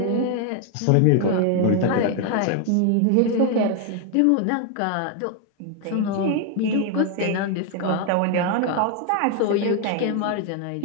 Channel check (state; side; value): different; both; correlation 0.01